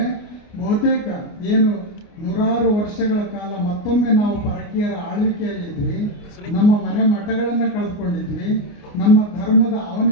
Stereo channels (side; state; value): right; late; 29 ms